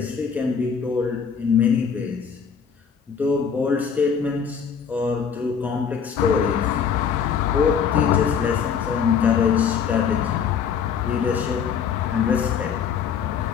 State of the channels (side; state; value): right; quieter; 7.0 dB